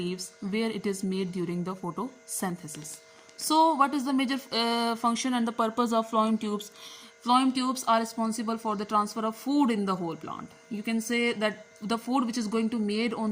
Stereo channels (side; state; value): both; identical; correlation 1.00